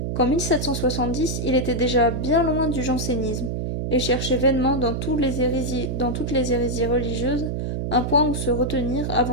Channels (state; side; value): noise; right; hum, 2 dB below the sound